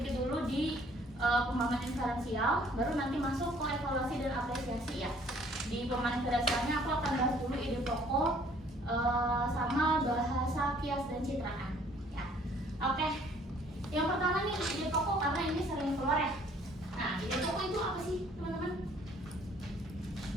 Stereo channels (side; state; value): both; normal; correlation 0.59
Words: dulu di pemahaman diferensial, baru nanti masuk ke evaluasi dan apresiasi ya. Di pemahaman diferensialnya aku akan bahas dulu ide pokok sama bahasa kias dan citraan ya. Oke, yang pertama nih ide pokok, karena ini sering keluar ya. Nah, ide pokok itu apa sih teman-teman?